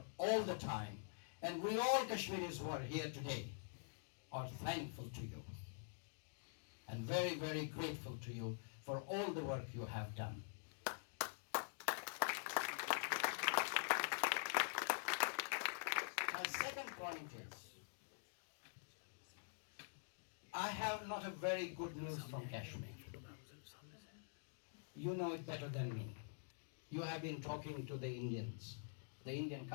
all the time. And we all Kashmiris who are here today are thankful to you and very, very grateful to you for all the work you have done. My second point is, I have not a very good news from Kashmir. You know it better than me. You have been talking to the Indians, the Indian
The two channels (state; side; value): silent; right; digital silence